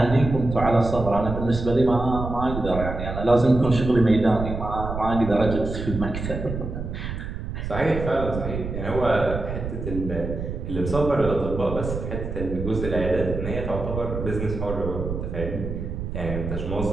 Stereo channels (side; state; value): right; noise; rumble, 6 dB below the sound